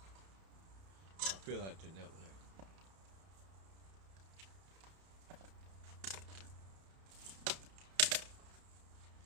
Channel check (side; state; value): left; late; 31 ms